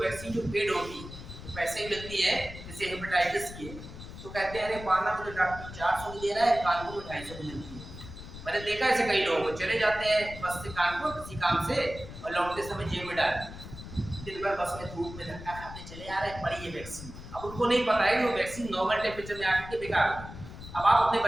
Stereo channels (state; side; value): noise; left; rumble, 13 dB below the sound